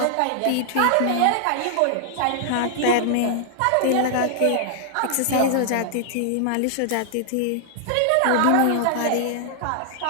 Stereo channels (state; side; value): different; both; correlation -0.01